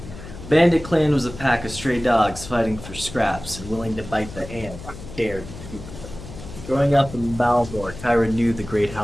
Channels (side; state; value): left; noise; hum, 13 dB below the sound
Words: Bandit Clan was a pack of stray dogs fighting for scraps and willing to bite the hand that dared to feed them. Growing up in Balmore, Tyra knew the great